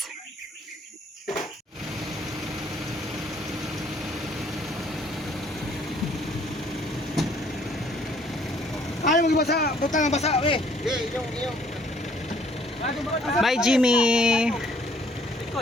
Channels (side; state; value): both; normal; correlation 0.61